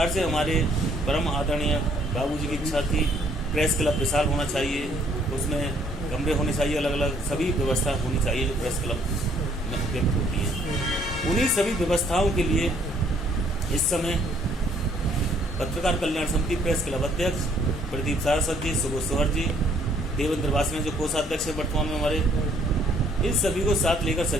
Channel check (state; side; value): normal; both; correlation 0.64